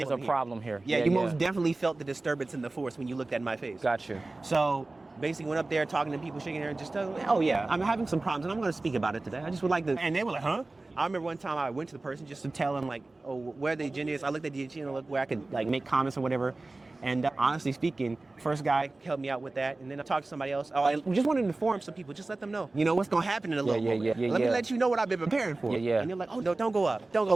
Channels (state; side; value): quieter; left; 3.1 dB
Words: a problem here. Yeah, you most definitely felt the disturbance in the force when you looked at my face. Got you. So basically went up there talking to people, shaking their head, just telling them, oh yeah, I'm having some problems and I'm going to speak about it today. I just would like to. And they were like, huh? I remember one time I went to the person just to tell them like, oh, where the agenda is. I looked at the agenda, looked where I could like make comments or whatever. And honestly speaking, first guy helped me out with that. And then I talked to somebody else. Oh, I just wanted to inform some people, just let them know, what's going to happen in a little moment. Let me let you know what I've been preparing for. And they're like, oh, no, don't go up. Don't